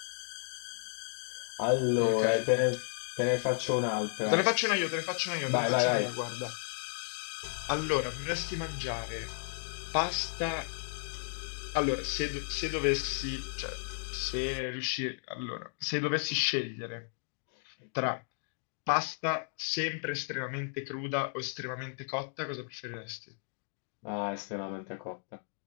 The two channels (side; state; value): right; silent; digital silence